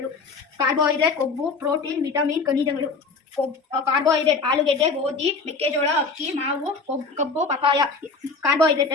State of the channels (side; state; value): right; quieter; 4.3 dB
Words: ಕಾರ್ಬೋಹೈಡ್ರೇಟ್ ಕೊಬ್ಬು, ಪ್ರೋಟೀನ್, ವಿಟಮಿನ್, ಖನಿಜಗಳು. ಕಾರ್ಬೋಹೈಡ್ರೇಟ್ ಆಲೂಗೆಡ್ಡೆ, ಗೋಧಿ, ಮೆಕ್ಕೆಜೋಳ, ಅಕ್ಕಿ, ಮಾವು, ಕಬ್ಬು, ಪಪಾಯ ಕಾರ್ಬೋಹೈಡ್ರೇಟ್